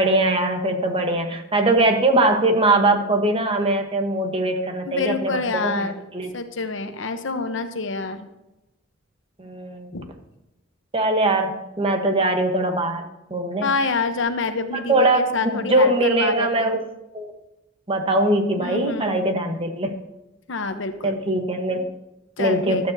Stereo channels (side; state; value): both; normal; correlation 0.03